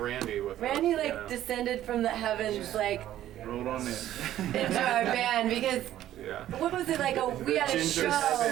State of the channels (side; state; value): left; quieter; 12.7 dB